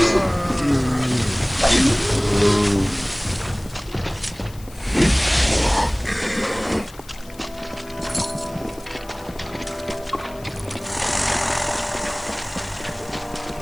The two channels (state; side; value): noise; left; hiss, 22 dB below the sound